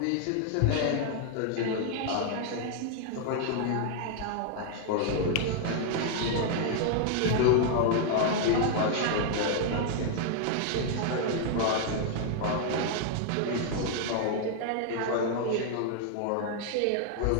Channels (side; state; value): both; different; correlation 0.00